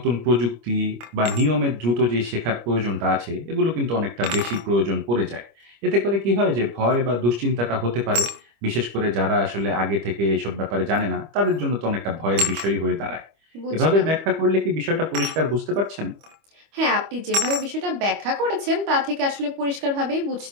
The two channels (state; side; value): late; left; 25 ms